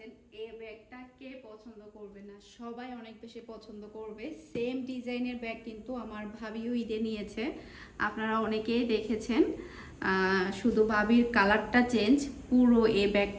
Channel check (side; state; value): both; identical; correlation 1.00